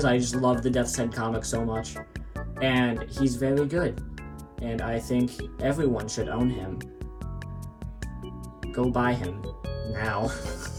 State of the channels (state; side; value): identical; both; correlation 1.00